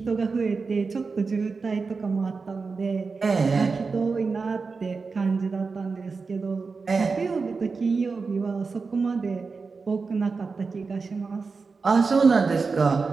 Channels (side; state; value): left; quieter; 4.6 dB